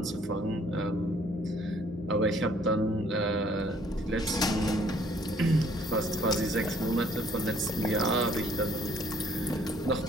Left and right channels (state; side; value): normal; both; correlation 0.61